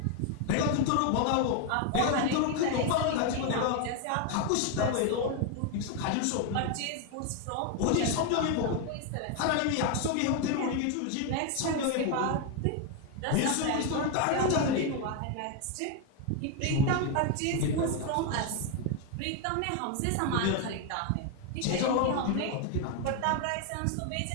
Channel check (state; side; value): different; both; correlation 0.01